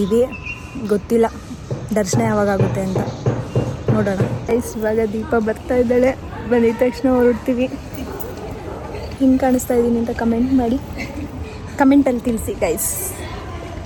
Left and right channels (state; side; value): identical; both; correlation 1.00